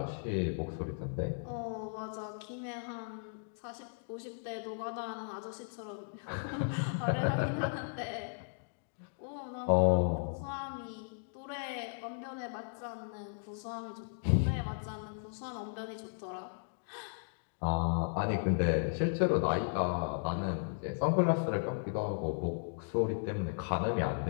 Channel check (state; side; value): silent; right; digital silence